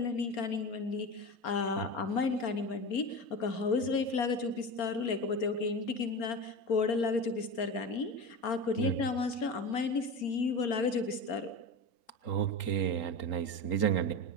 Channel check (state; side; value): late; right; 4.3 ms